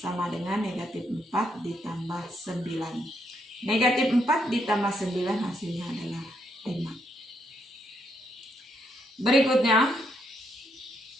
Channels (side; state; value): both; normal; correlation 0.76